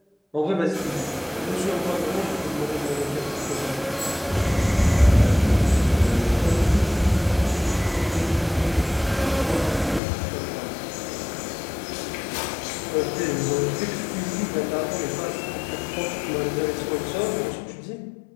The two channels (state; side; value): drops out; right; at 10.0 s